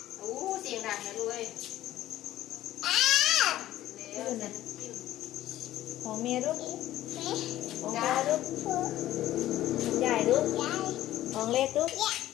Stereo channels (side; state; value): right; quieter; 14.0 dB